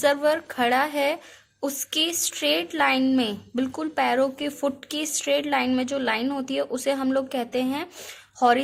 खड़ा है उसके स्ट्रेट लाइन में, बिल्कुल पैरों के फुट की स्ट्रेट लाइन में जो लाइन होती है उसे हम लोग कहते हैं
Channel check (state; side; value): identical; both; correlation 1.00